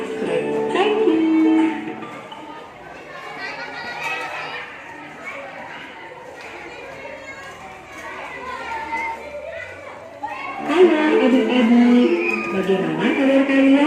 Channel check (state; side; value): identical; both; correlation 1.00